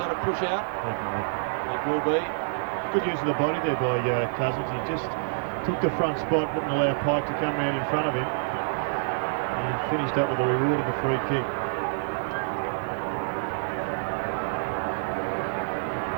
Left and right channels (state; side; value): silent; left; digital silence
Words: a push out? It will be. Good use of the body there by Cousins. He just took the front spot, didn't allow Pike to come round in front of him. And he finished up with the reward of a free kick.